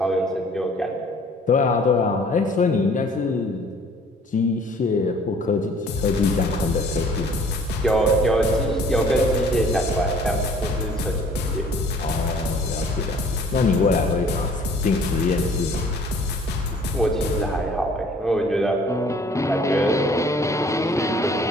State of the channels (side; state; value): both; normal; correlation 0.54